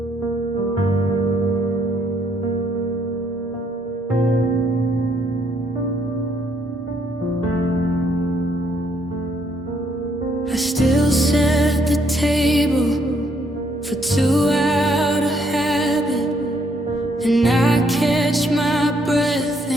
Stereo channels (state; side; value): normal; both; correlation 0.70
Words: still set the table for two out of habit, and I catch my breath